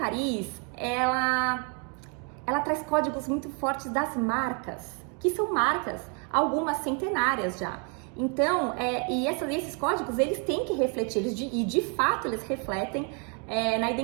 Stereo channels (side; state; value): left; quieter; 37.6 dB